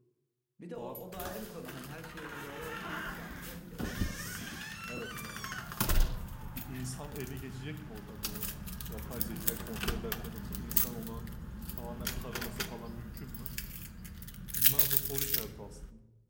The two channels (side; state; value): both; identical; correlation 1.00